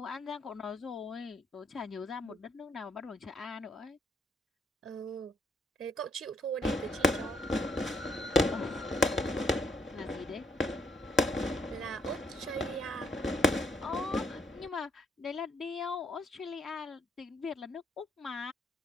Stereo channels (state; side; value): normal; both; correlation 0.70